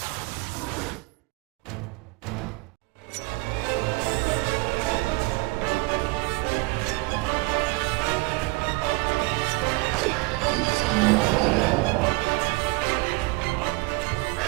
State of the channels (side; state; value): left; quieter; 25.1 dB